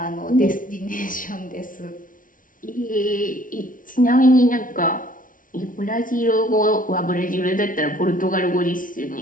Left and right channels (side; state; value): right; late; 0.39 ms